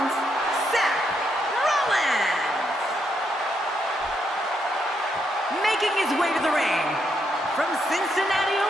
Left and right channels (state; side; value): normal; both; correlation 0.78